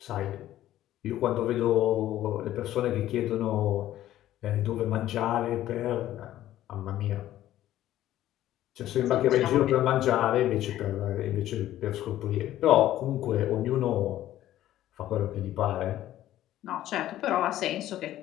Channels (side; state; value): right; quieter; 13.4 dB